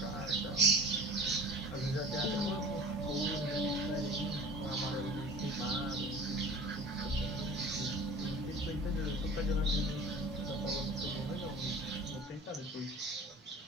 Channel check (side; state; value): both; normal; correlation 0.42